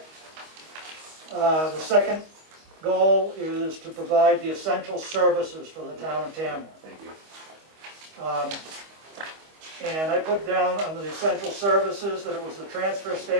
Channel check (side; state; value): left; late; 25 ms